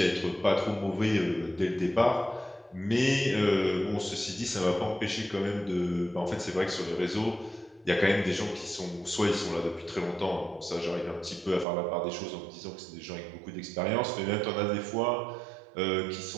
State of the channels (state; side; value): drops out; left; at 11.7 s